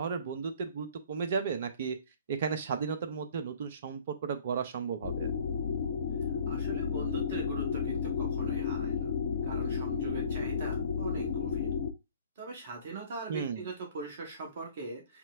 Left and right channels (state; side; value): inverted; both; correlation -0.51